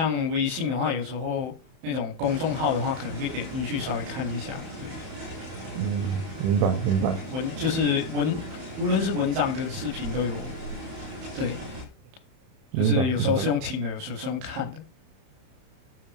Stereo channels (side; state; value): left; late; 31 ms